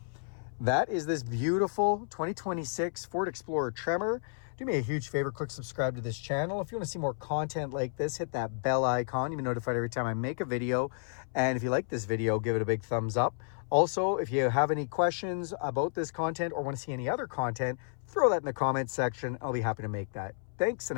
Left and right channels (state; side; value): silent; right; 57 dB below the other